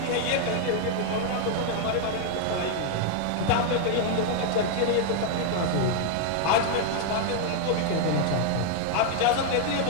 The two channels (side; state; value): both; different; correlation 0.00